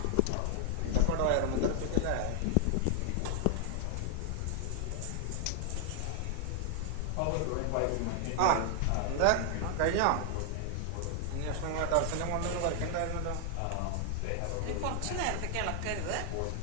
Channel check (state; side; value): different; both; correlation 0.00